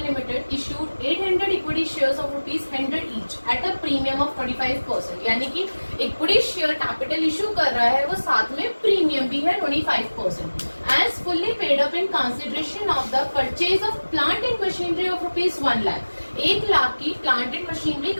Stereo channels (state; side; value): inverted; both; correlation -1.00